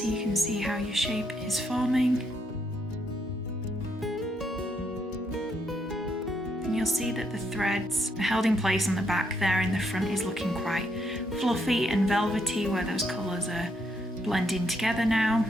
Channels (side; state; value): both; normal; correlation 0.76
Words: you can see how your shape is forming. And you'll see that the threads are held in place on the back there, and the front is looking quite fluffy and velvety where those colours are blending together now.